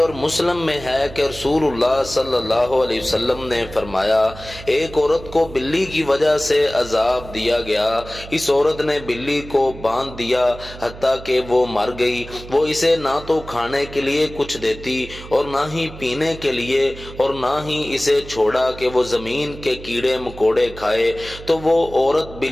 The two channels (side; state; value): right; noise; hum, 15 dB below the sound